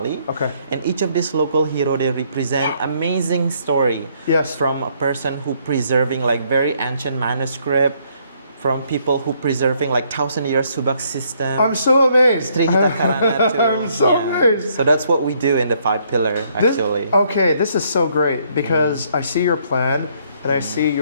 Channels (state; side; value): inverted; both; correlation -0.69